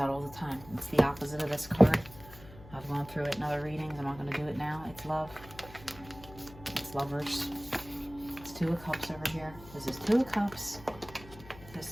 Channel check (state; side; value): noise; left; hum, 18 dB below the sound